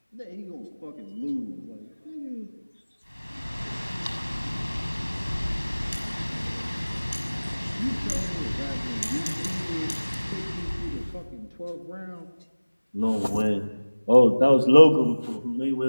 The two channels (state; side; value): inverted; both; correlation -1.00